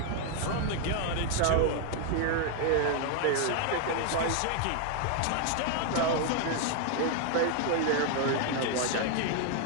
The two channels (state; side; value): different; both; correlation 0.00